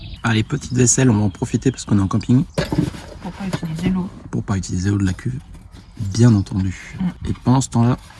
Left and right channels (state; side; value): identical; both; correlation 1.00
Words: Allez, petite vaisselle, on va en profiter parce qu'on est en camping. Pour pas utiliser l'eau. Pour pas utiliser l'eau de la cuve, bien entendu. Et pendant ce temps-là,